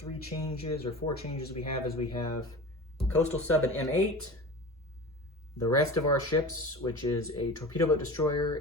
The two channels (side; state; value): both; normal; correlation 0.34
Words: changes or four changes we have is we have coastal sub and M8. The rest of our ships, which is a torpedo boat